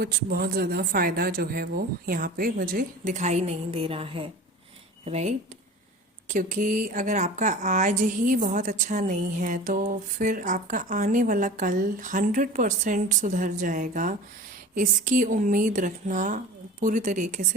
बहुत ज़्यादा फ़ायदा जो है वो यहाँ पे मुझे दिखाई नहीं दे रहा है, राइट? क्योंकि अगर आपका आज ही बहुत अच्छा नहीं है तो फिर आपका आने वाला कल 100% सुधर जाएगा, इसकी उम्मीद रखना पूरी तरीके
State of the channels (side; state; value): both; normal; correlation 0.37